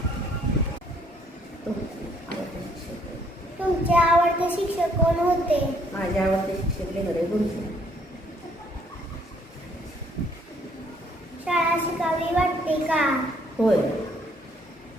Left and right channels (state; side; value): normal; both; correlation 0.65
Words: तुमचे आवडते शिक्षक कोण होते? माझे आवडते शिक्षक लेंगरे गुरुजी. शाळा शिकावी वाटते का? होय.